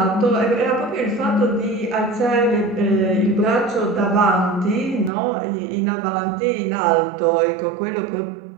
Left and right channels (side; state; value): left; drops out; at 5.1 s